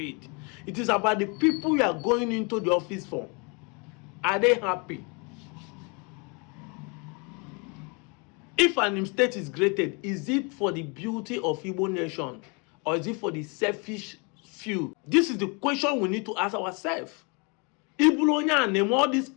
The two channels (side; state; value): right; quieter; 31.8 dB